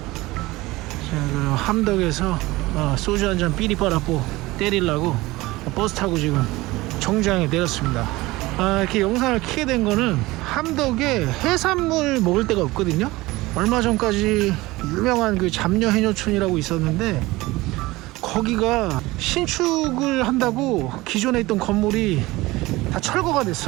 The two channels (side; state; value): left; quieter; 20.0 dB